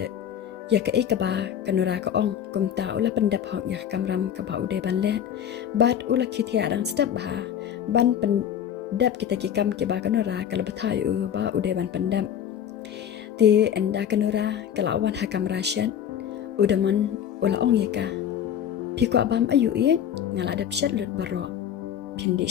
ya ka ikaba kanura ka ong kumta ula pendap hok ya kamram ka ba ude ban le bat ula khithia dang step ba ban pendap kita ki kam ki ba kanura kala bathai u ba ude ban pendap ti enda kanura kala wan hakam rasyan udaman ula ong ya ka pikwa bam ayu i ngala dap shat lut baro pindi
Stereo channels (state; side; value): quieter; right; 9.4 dB